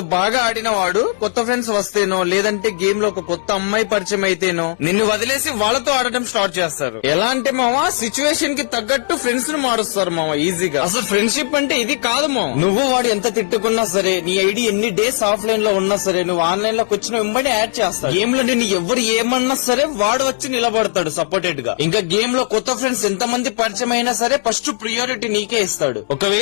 బాగా ఆడిన వాడు కొత్త ఫ్రెండ్స్ వస్తేనో, లేదంటే గేమ్ లో ఒక కొత్త అమ్మాయి పరిచయం అయితేనో నిన్ను వదిలేసి వాళ్ళతో ఆడటం స్టార్ట్ చేస్తారు. ఎలా అంటే మావా, సిచ్యువేషన్ కి తగ్గట్టు ఫ్రెండ్స్ ను మారుస్తారు మావా ఈజీగా. అసలు ఫ్రెండ్షిప్ అంటే ఇది కాదు మావా. నువ్వు వాడు ఎంత తిట్టుకున్నా సరే, నీ ఐడి ఎన్ని డేస్ ఆఫ్లైన్ లో ఉన్నా సరే, నువ్వు ఆన్లైన్ లోకి వచ్చిన వెంబడి యాడ్ చేస్తాడు. గేమ్ లో నేను ఎవరు ఏమన్నా సరే వాడు వచ్చి నిలబడతాడు సపోర్టెడ్ గా. ఇంకా గేమ్ లో కొత్త ఫ్రెండ్స్ ఎంత మంది పరిచయం అయినా సరే ఫస్ట్ ప్రియారిటీ నీకే ఇస్తాడు.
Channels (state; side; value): silent; right; digital silence